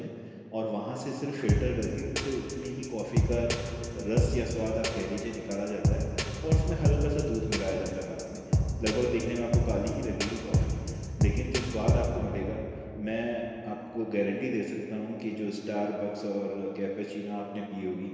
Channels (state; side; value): identical; both; correlation 1.00